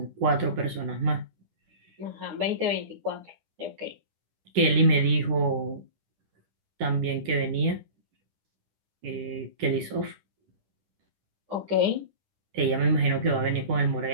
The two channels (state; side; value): late; left; 10 ms